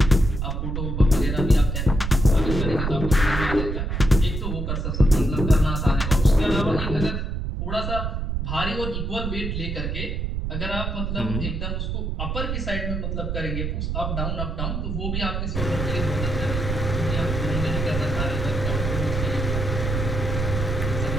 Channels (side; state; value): right; noise; rumble, 2 dB below the sound